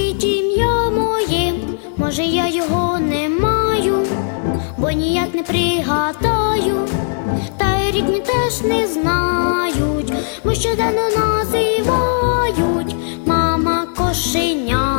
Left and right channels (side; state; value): right; silent; 60 dB below the other